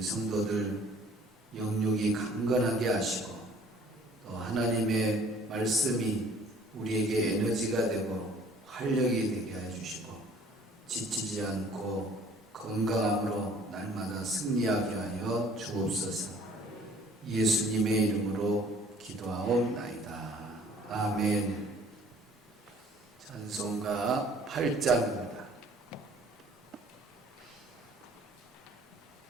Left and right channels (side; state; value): both; normal; correlation 0.54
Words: 영육이 강건하게 하시고 또 하나님의 말씀이 우리에게 에너지가 되고 활력이 되게 해주시고 지치지 않고 건강함으로 날마다 승리하게 하여 주옵소서. 예수님의 이름으로 기도하옵나이다. 아멘. 찬송가 8장입니다.